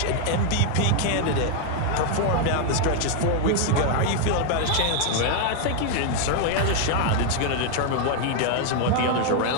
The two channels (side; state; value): both; different; correlation 0.00